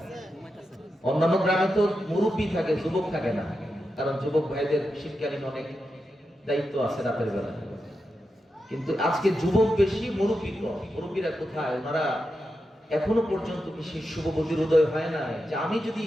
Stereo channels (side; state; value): both; normal; correlation 0.88